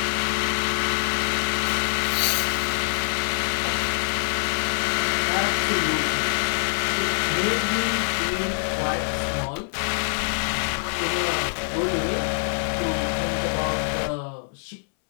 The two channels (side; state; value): right; silent; 62 dB below the other